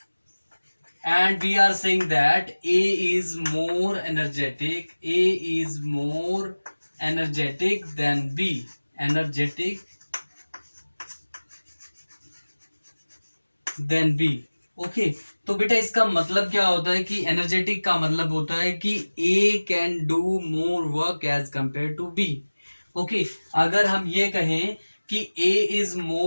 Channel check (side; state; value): both; inverted; correlation -1.00